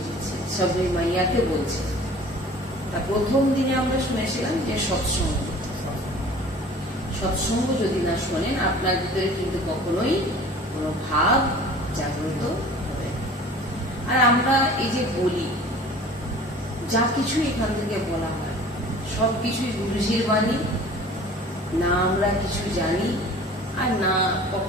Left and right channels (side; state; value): both; normal; correlation 0.45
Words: দিচ্ছে, সবে মাইয়াকে বলছে। তা প্রথম দিনে আমরা শুনেছিলাম যে সৎসঙ্গ, সৎসঙ্গ যদি না শোনেন আপনার ভিতরে কিন্তু কখনোই কোনো ভাব জাগ্রত হবে। আর আমরা এই যে বলি, যা কিছু এখান থেকে বলা হয় সবকিছুই গুরুজির বাণী, না আমরা কিছু জানি আর না